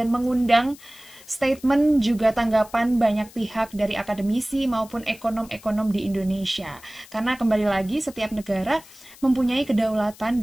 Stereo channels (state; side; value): noise; left; hiss, 22 dB below the sound